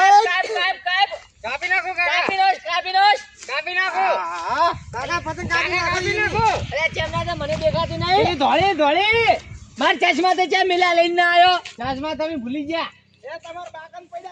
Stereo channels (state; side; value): identical; both; correlation 1.00